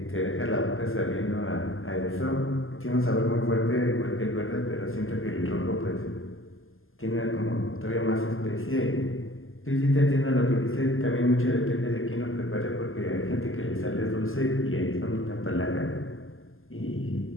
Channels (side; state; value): right; late; 0.59 ms